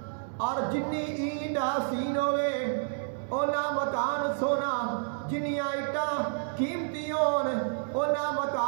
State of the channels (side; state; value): left; silent; digital silence